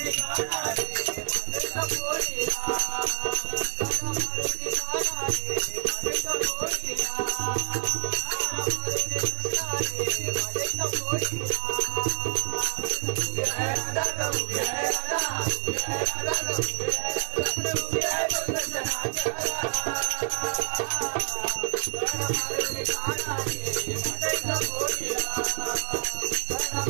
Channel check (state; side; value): silent; left; digital silence